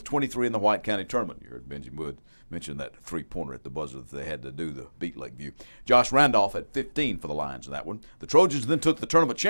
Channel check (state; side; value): inverted; both; correlation -1.00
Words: 23 in the White County tournament. You heard Benji Wood mention that three-pointer at the buzzer that they had to do to beat Lakeview. Josh Randolph had 15 for the Lions in that one. The Trojans then took the tournament